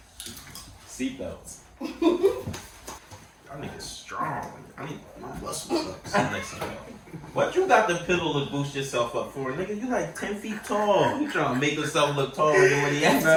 seatbelts. Y'all niggas strong. I need my muscles up. What you got the pillow to boost yourself up for, nigga? You like 10 feet tall. You trying to make yourself look taller than what he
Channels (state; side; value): identical; both; correlation 1.00